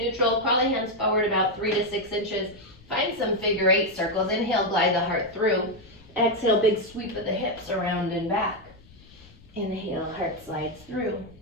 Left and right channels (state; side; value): noise; left; rumble, 24 dB below the sound